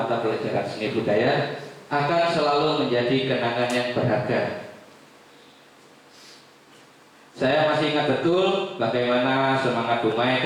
pelajaran seni budaya, akan selalu menjadi kenangan yang berharga. Saya masih ingat betul bagaimana semangat Bu Mei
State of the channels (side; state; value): both; identical; correlation 1.00